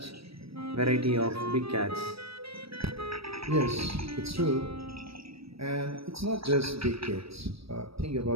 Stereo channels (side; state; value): left; late; 0.76 ms